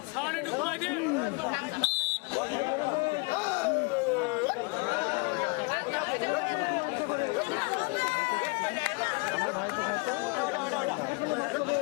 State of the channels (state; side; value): quieter; right; 30.8 dB